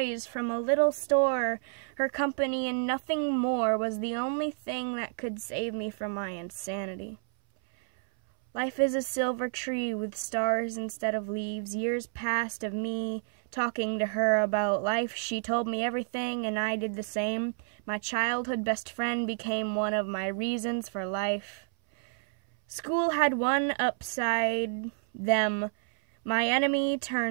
from a little store. Her company and nothing more was the only thing that could save me from my insanity. Life is a silver tree with stars instead of leaves. Years passed of me talking to her about life. She told me everything, and I did the same. My childhood best friend became one of my reasons for life. School had one upside, them. My enemy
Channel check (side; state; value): left; silent; 58 dB below the other